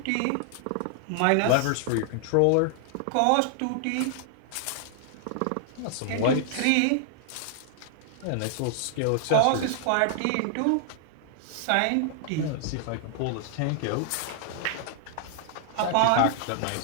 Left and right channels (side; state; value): both; different; correlation 0.00